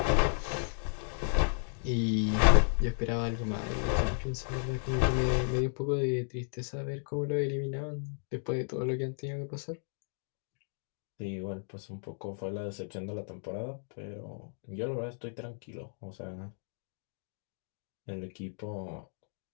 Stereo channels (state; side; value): silent; right; digital silence